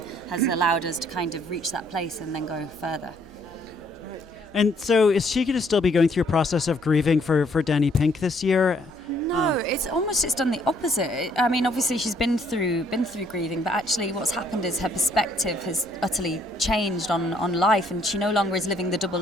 has allowed us to kind of reach that place and then go further. And so is she going to still be going through a process of grieving for Danny Pink this year? No, it's done the opposite. I mean, obviously she's been through grieving, but actually what's happened is her perspective has utterly changed on life, and she no longer is living the double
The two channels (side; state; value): right; noise; hum, 28 dB below the sound